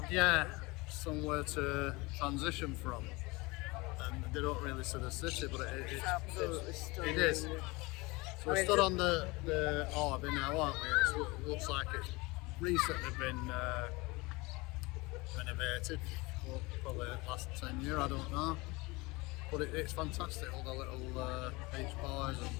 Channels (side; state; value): right; quieter; 24.1 dB